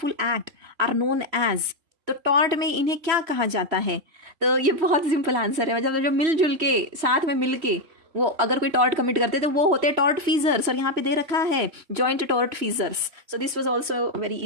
act are known as. तो टॉर्ट में इन्हें क्या कहा जाता है? तो ये बहुत सिंपल आंसर है, मतलब जो मिलजुल के साथ में मिल के वो अगर कोई टॉर्ट कमिट करते तो वो होते टॉर्ट फीजर्स, और यहाँ पे दे रखा है joint tort feasors. So this was also very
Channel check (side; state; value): left; late; 3.1 ms